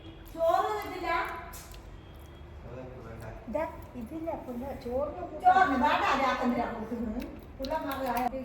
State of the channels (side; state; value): both; identical; correlation 1.00